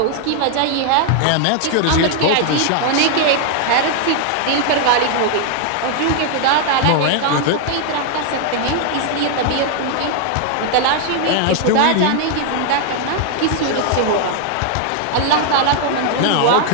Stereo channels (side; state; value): both; different; correlation 0.00